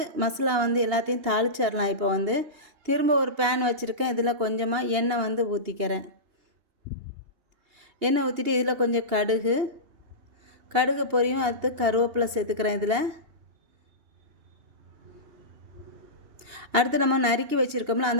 மசாலா எல்லாத்தையும் தாளிச்சிடலாம். இப்போ திரும்ப ஒரு பேன் வச்சுருக்கேன். இதில் கொஞ்சமாக எண்ணெய் ஊற்றிக்கிறேன். எண்ணெய் ஊற்றிட்டு இதில் கொஞ்சம் கடுகு பொரியும், அடுத்து கருவேப்பிலை சேர்த்துக்கிறேன். இதில் அடுத்து நம்ம நறுக்கி வச்சுருக்கோம்ல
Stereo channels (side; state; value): left; late; 2.8 ms